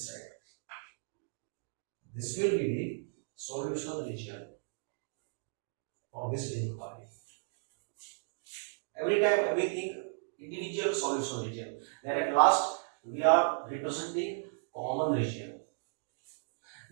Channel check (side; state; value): left; silent; digital silence